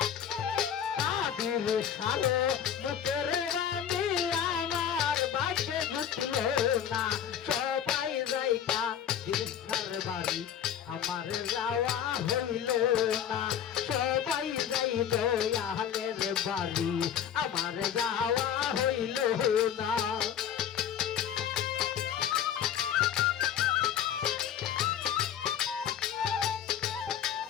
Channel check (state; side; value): quieter; right; 9.2 dB